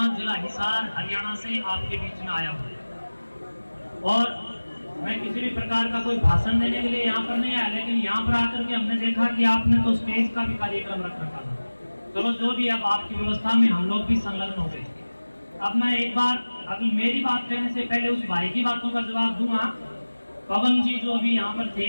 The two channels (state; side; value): inverted; both; correlation -1.00